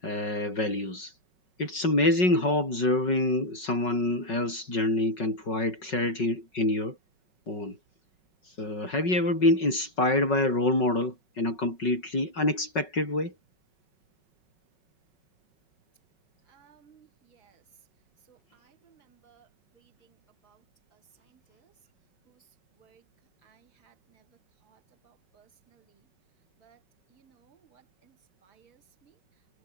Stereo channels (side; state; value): right; late; 5.4 ms